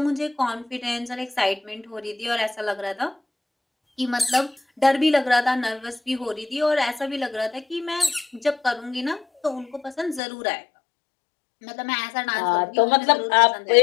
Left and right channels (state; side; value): drops out; right; at 10.2 s